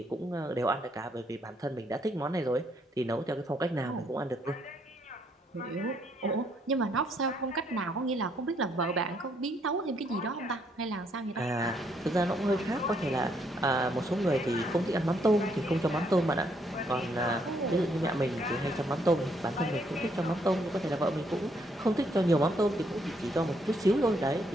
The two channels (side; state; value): both; normal; correlation 0.71